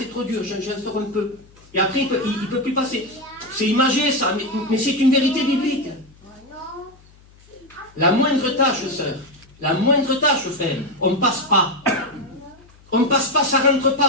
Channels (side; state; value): left; noise; hum, 27 dB below the sound